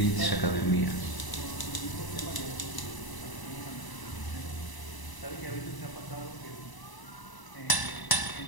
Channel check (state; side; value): late; right; 1.0 ms